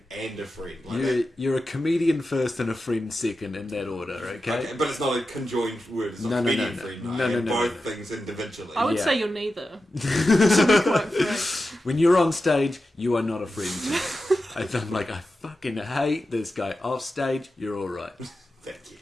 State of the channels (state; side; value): normal; both; correlation 0.91